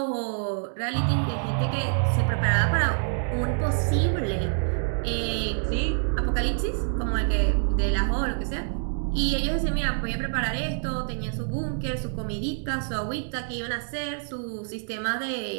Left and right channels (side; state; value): left; silent; digital silence